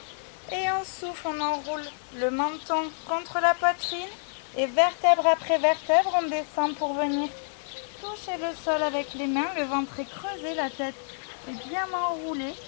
Et on souffle, on enroule le menton contre la poitrine. Et vertèbre après vertèbre, on descend pour venir toucher le sol avec les mains. Le ventre est creusé, la tête est bien enroulée.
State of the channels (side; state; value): right; silent; digital silence